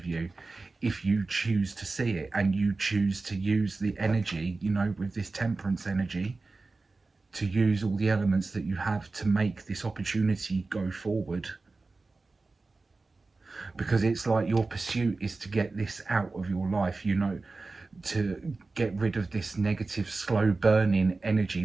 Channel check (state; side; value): quieter; left; 3.7 dB